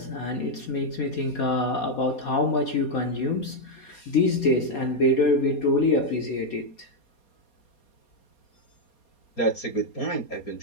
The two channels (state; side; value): late; right; 4.3 ms